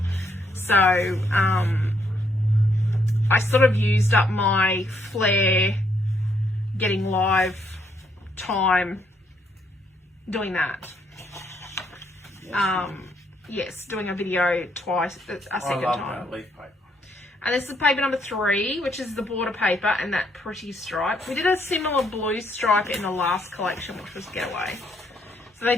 So I sort of used up my flare getting live time doing that. Yes, doing a video twice, a second time. Leaf paper. And this is paper number 3, which is the border paper and that pretty stripe. We did a similar blue stripe in the last collection, which was Getaway. So they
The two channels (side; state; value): both; normal; correlation 0.72